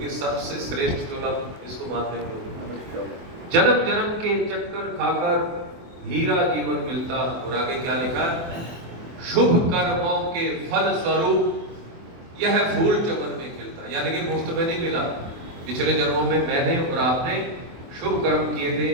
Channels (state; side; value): late; left; 24 ms